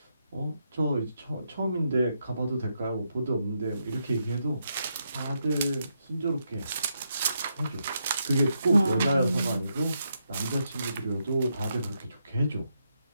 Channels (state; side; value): inverted; both; correlation -0.81